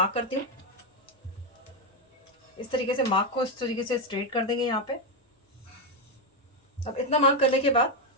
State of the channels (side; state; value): both; normal; correlation 0.05